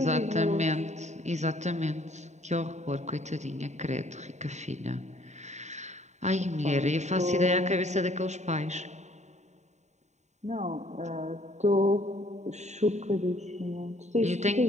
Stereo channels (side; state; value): left; late; 0.34 ms